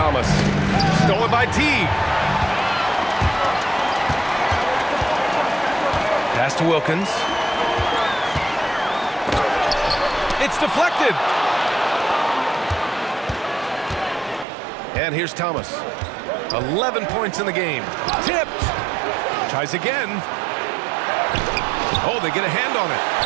Stolen by Teague. Pass to Wilkins. It's deflected. And here's Thomas. 11 points in the game. Tipped. Tries again. Oh, they get a hand on it.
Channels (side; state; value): left; drops out; at 14.5 s